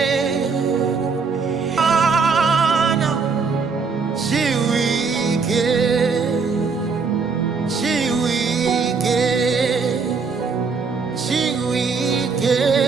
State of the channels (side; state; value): left; quieter; 5.0 dB